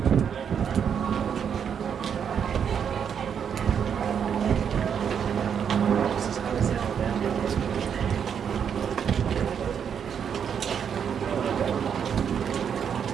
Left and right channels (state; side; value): quieter; left; 7.7 dB